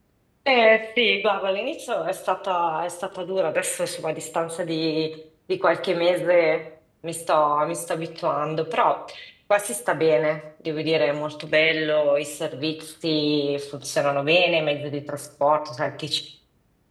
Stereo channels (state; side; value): identical; both; correlation 1.00